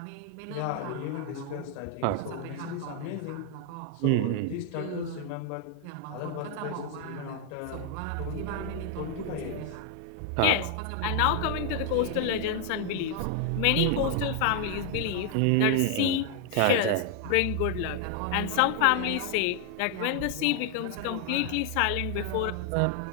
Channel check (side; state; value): both; different; correlation 0.00